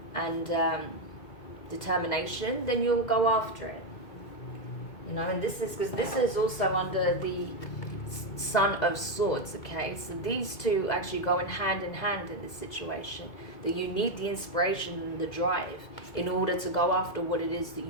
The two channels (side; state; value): right; late; 2.0 ms